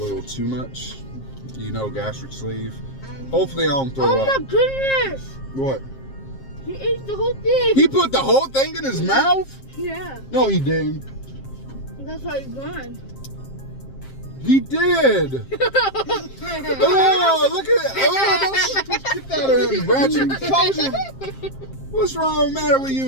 too much. You know, gastric sleeve. Hopefully I don't throw up. Oh my goodness! What? He ate the whole thing. He put the whole thing in his mouth? Yeah. No, he didn't. That's how he's gone. He did. Oh, look at it. Oh, get that out of him, Ratchet. Closure. What's wrong matter with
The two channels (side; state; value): right; late; 7.5 ms